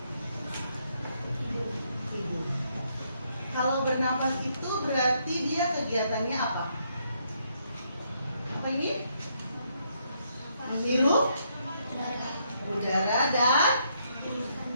Hidung. Kalau bernafas itu berarti dia kegiatannya apa? Apa ini? Menghirup udara dan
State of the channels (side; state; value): both; inverted; correlation -0.74